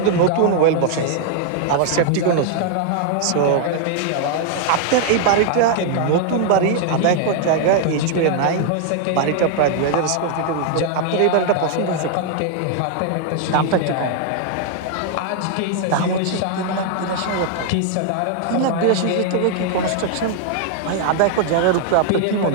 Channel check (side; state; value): both; different; correlation -0.01